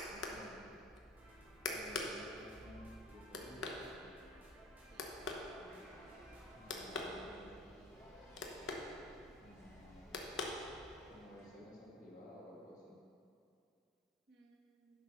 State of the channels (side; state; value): both; normal; correlation 0.40